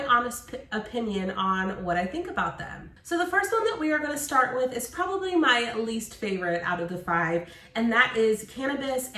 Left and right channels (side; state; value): both; identical; correlation 1.00